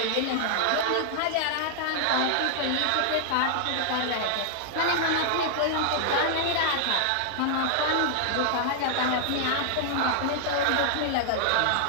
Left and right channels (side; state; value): both; different; correlation -0.01